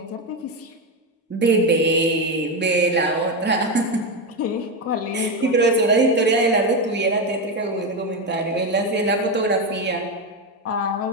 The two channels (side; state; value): both; normal; correlation 0.11